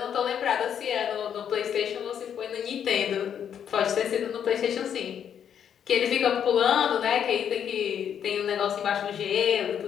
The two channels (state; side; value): quieter; right; 8.6 dB